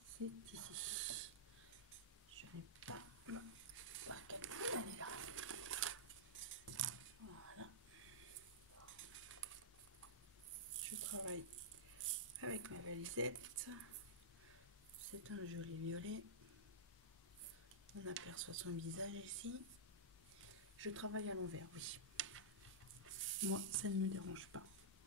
c'est ici. Je n'ai pas ma barquette, elle est là. Voilà, je travaille avec ma valisette. C'est un joli violet. On aperçoit son visage ici. Je travaille à l'envers, oui. Moi, ça ne me dérange pas.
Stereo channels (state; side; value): normal; both; correlation -0.12